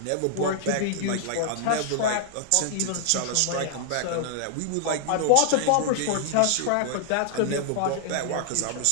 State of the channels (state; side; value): different; both; correlation -0.01